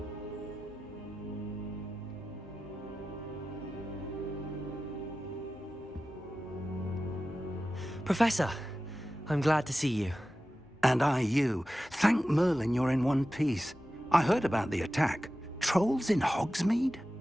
Professor, I'm glad to see you. And I you. Thank Merlin you're in one piece. I heard about the attack. Trolls in Hogsmeade?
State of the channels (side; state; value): both; normal; correlation 0.94